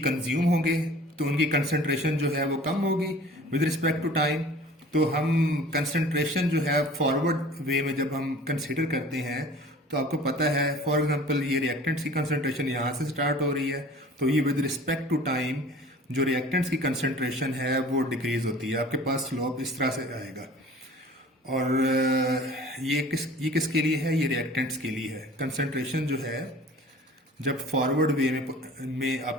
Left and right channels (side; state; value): both; normal; correlation 0.46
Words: कंज्यूम होंगे, तो उनकी कंसंट्रेशन जो है वो कम होगी विद रिस्पेक्ट टू टाइम। तो हम कंसंट्रेशन जो है फॉरवर्ड वे में जब हम कंसिडर करते हैं तो आपको पता है, फॉर एग्जांपल ये रिएक्टेंट्स की कंसंट्रेशन यहाँ से स्टार्ट हो रही है, तो ये विद रिस्पेक्ट टू टाइम जो रिएक्टेंट्स की कंसंट्रेशन है वो डिक्रीज होती है। आपके पास स्लोप इस तरह से आएगा। और ये किसके लिए है, ये रिएक्टेंट्स के लिए है। कंसंट्रेशन जो है जब फॉरवर्ड वे में